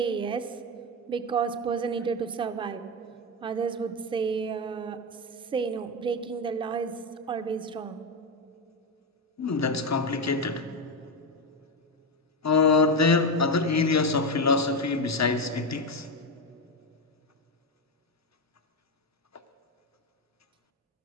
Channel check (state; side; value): normal; both; correlation 0.11